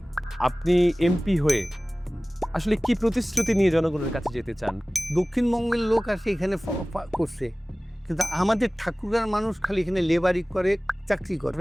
আপনি এমপি হয়ে আসলে কি প্রতিশ্রুতি নিয়ে জনগণের কাছে যেতে চান? দক্ষিণবঙ্গের লোক আসে এখানে করছে, কিন্তু আমাদের ঠাকুরার মানুষ খালি এখানে লেবারি করে, চাকরি করে।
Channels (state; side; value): normal; both; correlation 0.98